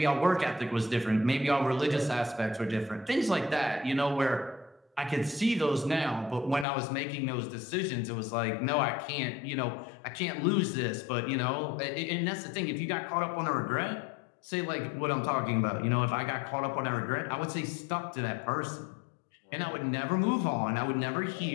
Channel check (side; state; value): right; drops out; at 6.7 s